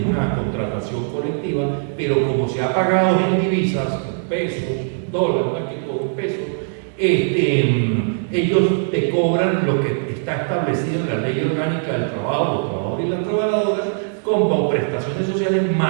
una contratación colectiva, pero como se ha pagado en divisas, en pesos, dólares, más que todo en pesos, ellos te cobran lo que está establecido en la Ley Orgánica del Trabajo, los trabajadores y las trabajadoras, como prestaciones sociales,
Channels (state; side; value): silent; left; digital silence